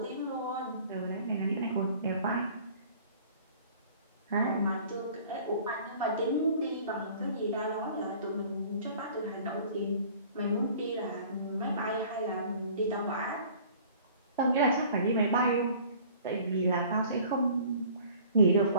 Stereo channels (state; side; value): inverted; both; correlation -0.50